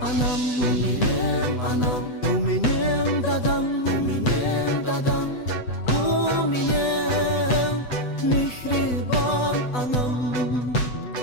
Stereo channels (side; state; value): right; late; 8.0 ms